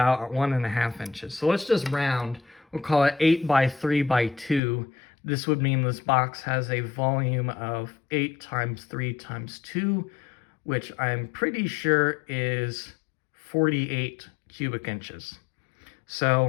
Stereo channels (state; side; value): drops out; right; at 4.6 s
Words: 1.5 inches. So let's just round. We'll call it 8 by 3 by 2. This would mean this box has a volume of 8 times 3 times 2, which I'm pretty sure is 48 cubic inches.